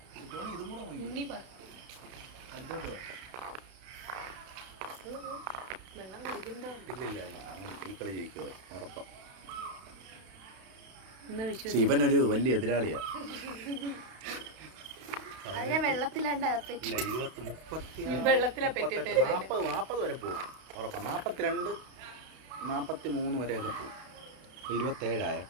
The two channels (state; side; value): late; left; 32 ms